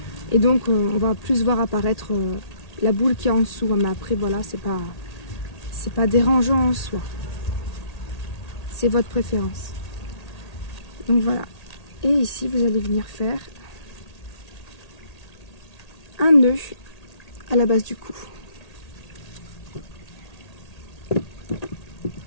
et donc on va plus voir apparaître la boule qui est en dessous, mais après voilà, c'est pas dérangeant en soi, c'est votre préférence. Donc voilà, et ici vous allez venir faire un nœud à la base du cou.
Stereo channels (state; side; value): late; right; 1.8 ms